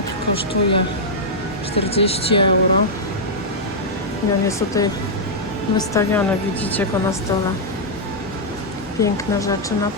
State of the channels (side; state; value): both; normal; correlation -0.07